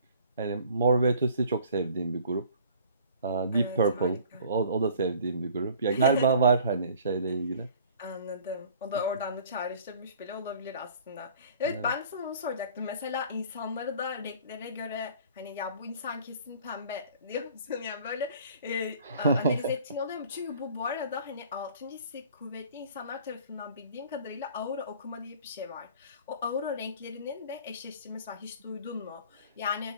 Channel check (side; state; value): both; inverted; correlation -0.51